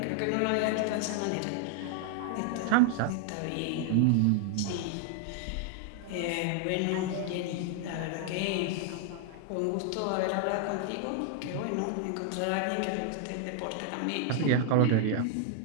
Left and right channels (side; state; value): both; different; correlation 0.00